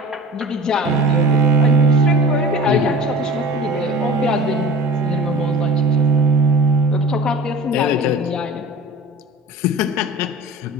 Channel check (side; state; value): both; normal; correlation 0.38